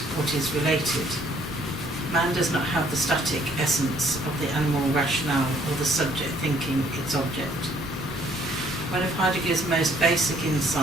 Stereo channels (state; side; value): normal; both; correlation 0.63